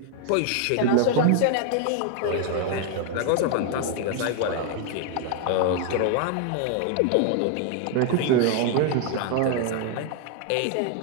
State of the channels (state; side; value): different; both; correlation 0.00